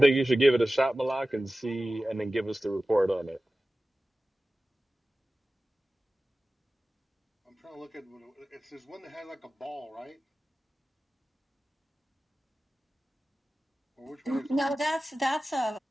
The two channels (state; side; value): normal; both; correlation 0.96